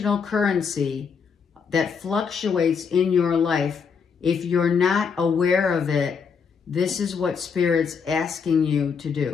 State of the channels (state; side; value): quieter; right; 6.1 dB